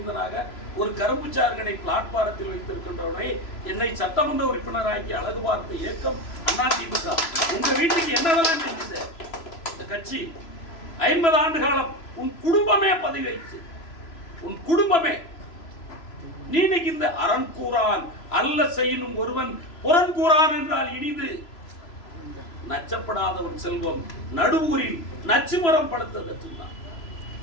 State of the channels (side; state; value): right; late; 3.0 ms